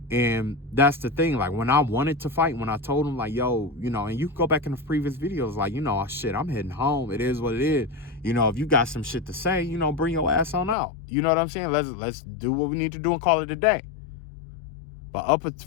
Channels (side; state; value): right; drops out; at 10.8 s